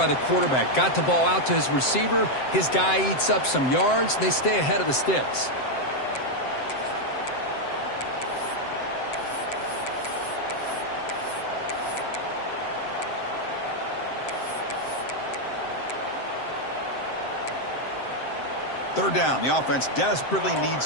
the quarterback. Got the ball out to his receiver. His guy eats up some yards. They stay ahead of the sticks. Third down. The offense desperately needs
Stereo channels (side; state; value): right; late; 7.7 ms